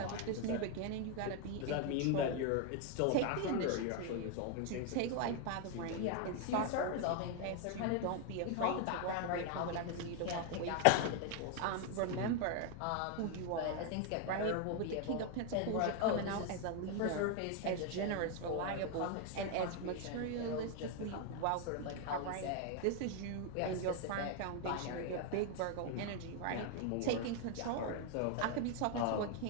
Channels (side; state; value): both; different; correlation 0.01